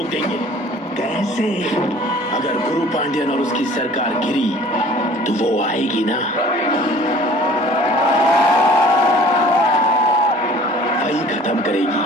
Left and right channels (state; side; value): normal; both; correlation 0.50